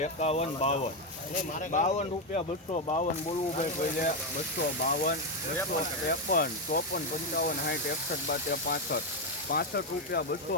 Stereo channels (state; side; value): normal; both; correlation 0.06